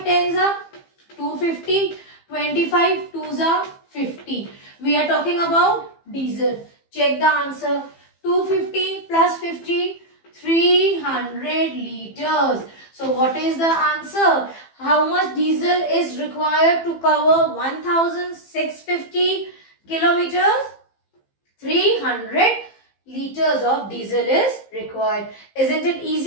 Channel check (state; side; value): late; right; 15 ms